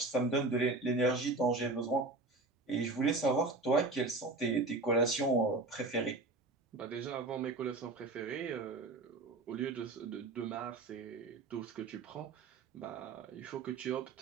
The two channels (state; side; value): quieter; left; 3.3 dB